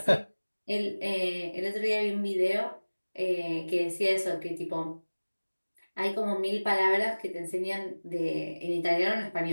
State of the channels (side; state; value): both; inverted; correlation -1.00